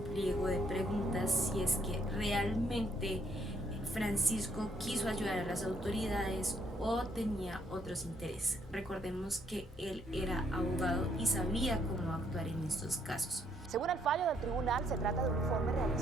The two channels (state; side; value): normal; both; correlation 0.69